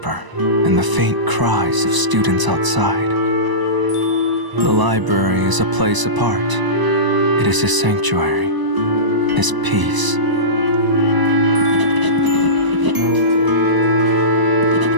and the faint cries of students outside. The library is a place apart. It is his sanctuary, his peace.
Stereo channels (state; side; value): late; left; 1.0 ms